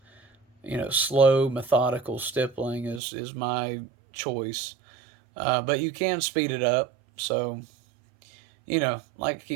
Slow, methodical stippling is my choice. But you can speed it up. So, like I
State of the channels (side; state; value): left; drops out; at 3.0 s